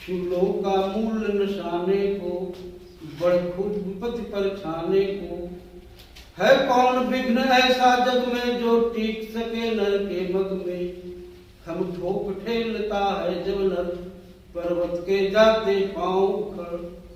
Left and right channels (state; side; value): identical; both; correlation 1.00